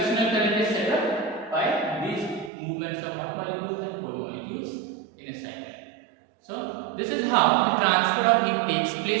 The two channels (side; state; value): left; drops out; at 2.5 s